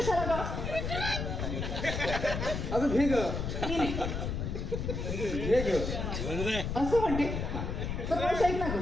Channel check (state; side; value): noise; left; rumble, 3 dB below the sound